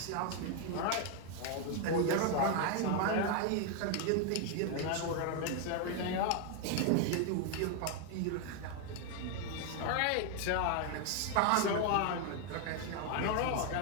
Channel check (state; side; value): different; both; correlation 0.01